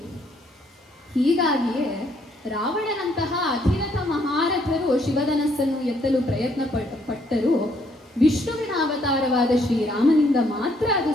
ಹೀಗಾಗಿಯೇ ರಾವಣನಂತಹ ಅಧಿರಥ ಮಹಾರಥರು ಶಿವಧನಸ್ಸನ್ನು ಎತ್ತಲು ಪ್ರಯತ್ನ ಪಟ್ಟರು. ವಿಷ್ಣುವಿನ ಅವತಾರವಾದ ಶ್ರೀರಾಮನಿಂದ ಮಾತ್ರ ಅದು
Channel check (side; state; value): both; normal; correlation 0.68